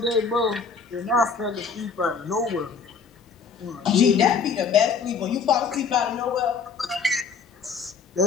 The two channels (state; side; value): quieter; right; 5.5 dB